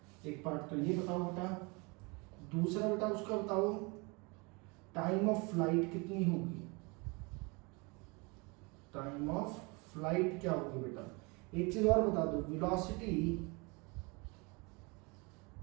एक पार्ट तो ये बताओ बेटा, दूसरा बेटा उसका बताओ टाइम ऑफ फ्लाइट कितनी होगी, टाइम ऑफ फ्लाइट क्या होगी बेटा। एक चीज और बता दो, velocity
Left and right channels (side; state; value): left; quieter; 28.7 dB